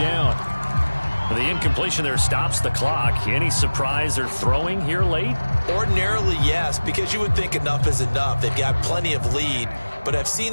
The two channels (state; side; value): inverted; both; correlation -1.00